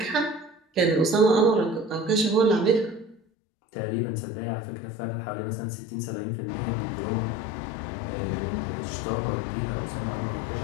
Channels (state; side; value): drops out; right; at 3.2 s